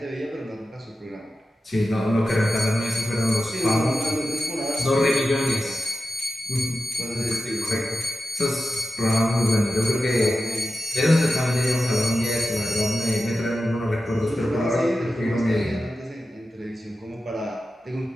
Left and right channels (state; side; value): normal; both; correlation 0.92